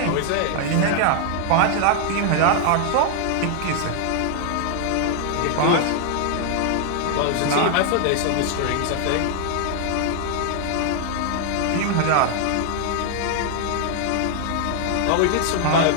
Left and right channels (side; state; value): both; different; correlation 0.00